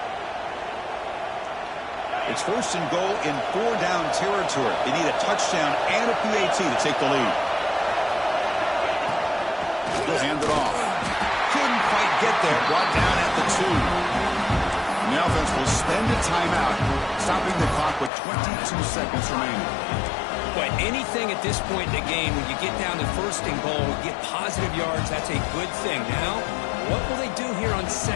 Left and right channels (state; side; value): drops out; right; at 18.1 s